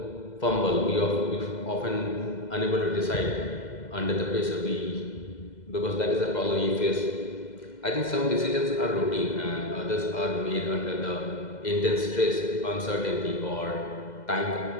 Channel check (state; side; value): late; right; 2.0 ms